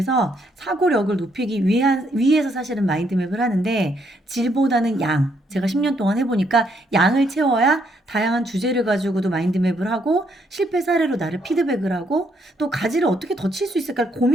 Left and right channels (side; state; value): both; normal; correlation 0.73